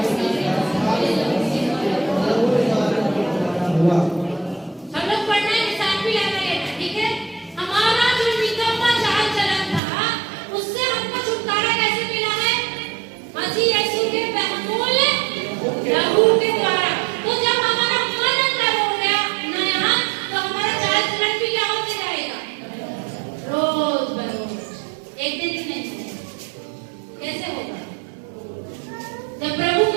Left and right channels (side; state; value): left; drops out; at 9.8 s